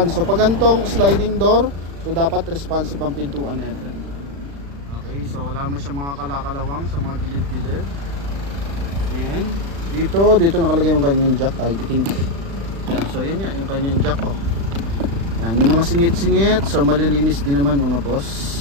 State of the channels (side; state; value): left; late; 36 ms